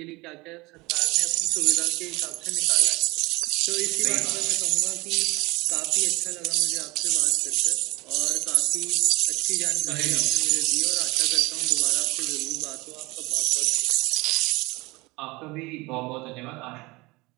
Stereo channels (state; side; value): quieter; left; 23.4 dB